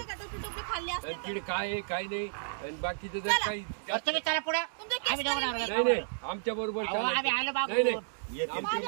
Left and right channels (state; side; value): silent; left; digital silence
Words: का, टोपले खाल्ले असते तर. तिकडे काय आहे काय नाही आणि बाकीचं जर चला. काही बरं, तुम्ही चला पुढे तुमचे केस आम्ही दोघं करून नवरा नाही बायको. नाही आमच्या बरोबर अहो, आम्ही आलो बाबू. नाही नाही येते. आमच्या